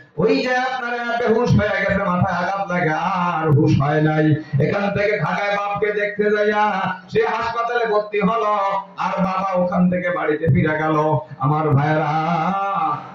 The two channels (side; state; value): both; identical; correlation 1.00